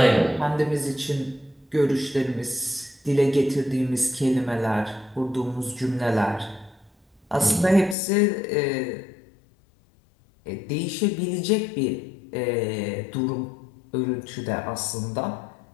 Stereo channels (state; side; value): drops out; right; at 8.0 s